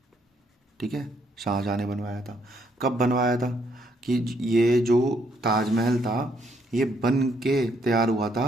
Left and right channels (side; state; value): both; normal; correlation 0.71